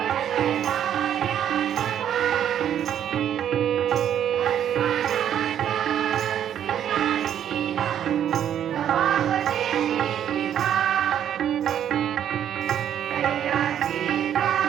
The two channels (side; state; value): left; quieter; 9.9 dB